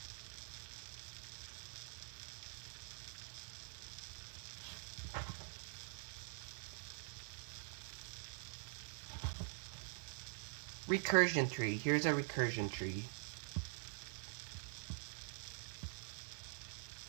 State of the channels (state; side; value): silent; left; digital silence